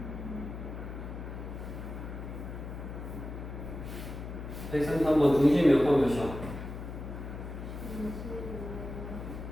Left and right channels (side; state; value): left; noise; hum, 8 dB below the sound